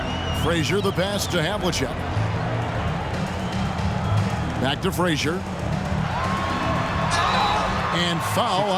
Frazier the pass to Havlicek. Back to Frazier. And foul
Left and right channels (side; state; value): both; identical; correlation 1.00